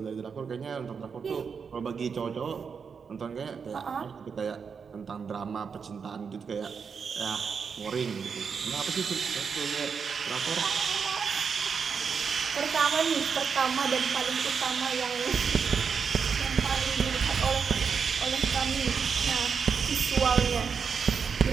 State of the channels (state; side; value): quieter; left; 6.1 dB